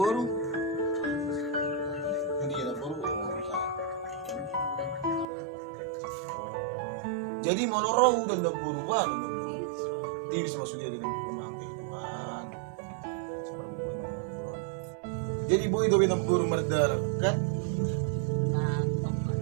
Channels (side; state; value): left; drops out; at 5.2 s